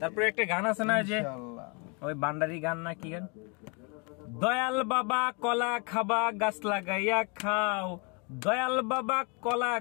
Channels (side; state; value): right; quieter; 33.0 dB